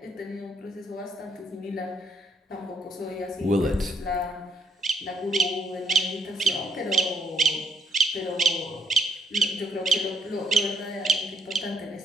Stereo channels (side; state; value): both; normal; correlation 0.73